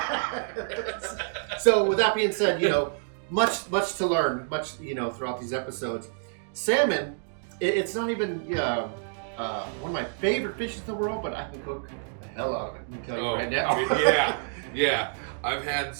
So with that being said, you know, much to learn, you know, throughout these episodes. Salmon, it's not even one of my favorite fishes in the world, but I can cook the hell out of it. I'm telling you right now. yeah. I've had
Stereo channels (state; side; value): silent; left; digital silence